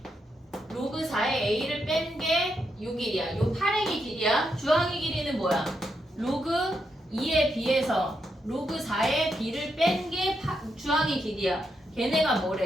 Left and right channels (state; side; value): normal; both; correlation 0.82